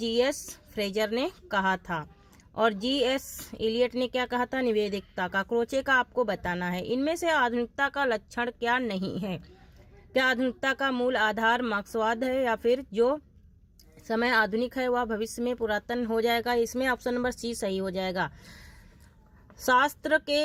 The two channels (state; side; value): identical; both; correlation 1.00